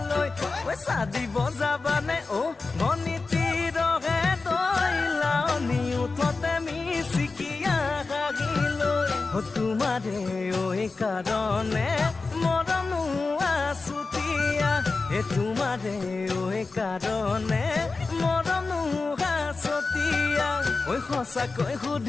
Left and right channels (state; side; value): quieter; right; 3.9 dB